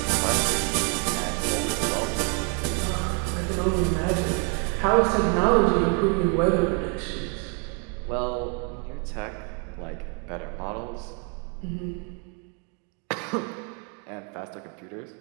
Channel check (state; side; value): quieter; left; 36.0 dB